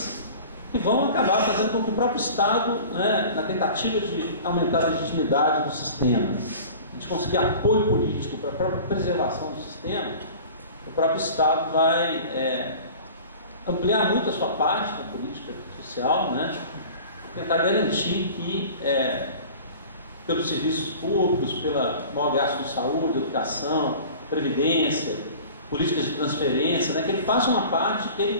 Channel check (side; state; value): both; inverted; correlation -0.41